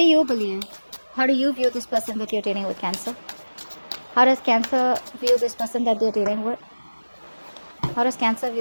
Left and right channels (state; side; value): inverted; both; correlation -1.00